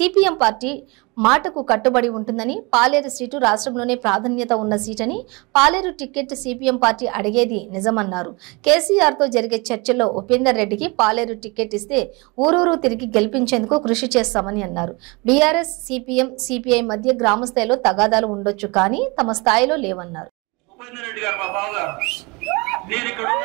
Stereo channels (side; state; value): left; quieter; 27.3 dB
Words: పార్టీ మాటకు కట్టుబడి ఉంటుందని, పాలేరు సీటు రాష్ట్రంలోనే ప్రాధాన్యత ఉన్న సీటని, పాలేరు టికెట్ సిపిఎం పార్టీ అడిగేది నిజమన్నారు. కేసీఆర్తో జరిగే చర్చల్లో ఉపేందర్ రెడ్డికి పాలేరు టికెట్ ఇస్తే ఊరూరు తిరిగి గెలిపించేందుకు కృషి చేస్తామని అన్నారు. బీఆర్ఎస్, సిపిఎం, సిపిఐ మధ్య గ్రామ స్థాయిలో తగాదాలు ఉండొచ్చు, కానీ తమ స్థాయిలో లేవన్నారు. ఉపేందర్ రెడ్డి గారు మా బావగారు, నేను ఇక్కడ